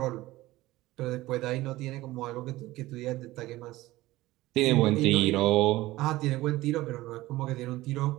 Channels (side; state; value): left; quieter; 17.9 dB